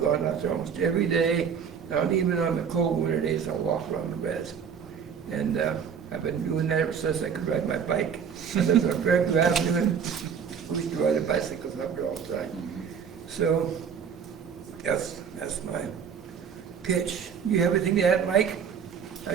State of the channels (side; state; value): left; quieter; 7.1 dB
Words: gone out there almost every day. And even on the cold winter days, I'll walk around the res. And I've been doing that ever since I could ride my bike. And there's a very good avenue. We used to ride a bicycles up there all the time. So that's my pitch. You have anything to add, Mike? I